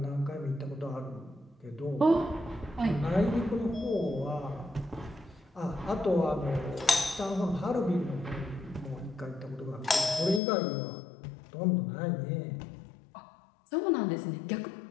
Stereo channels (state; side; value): drops out; right; at 10.4 s